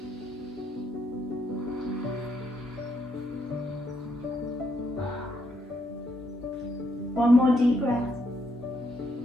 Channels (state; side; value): normal; both; correlation 0.76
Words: One more deep breath.